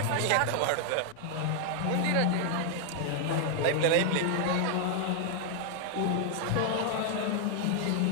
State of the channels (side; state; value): both; different; correlation 0.00